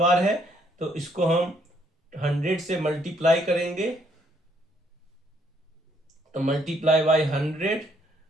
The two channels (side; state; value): both; normal; correlation 0.69